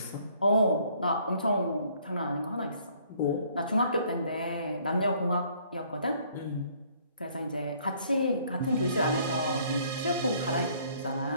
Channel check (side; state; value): both; inverted; correlation -0.62